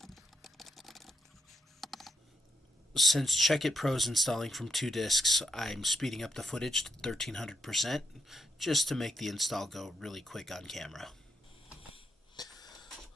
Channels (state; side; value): normal; both; correlation 0.81